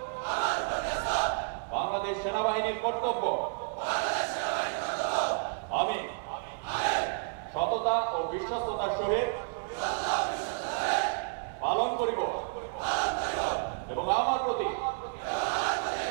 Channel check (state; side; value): silent; left; digital silence